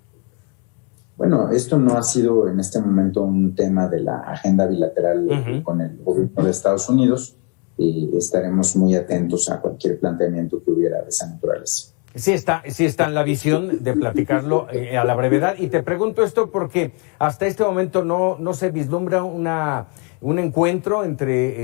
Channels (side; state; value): right; quieter; 35.5 dB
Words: Bueno, esto no ha sido en este momento un tema de la agenda bilateral con el gobierno de Estados Unidos. Estaremos muy atentos a cualquier planteamiento que hubiera de esa naturaleza. Sí está en la visión de platicarlo a la brevedad. Y te pregunto esto porque hasta este momento no se vislumbra un encuentro